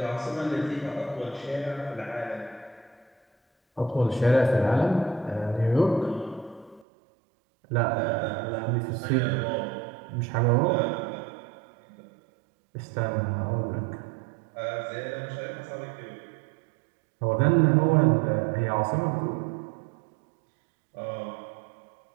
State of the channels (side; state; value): left; drops out; at 6.9 s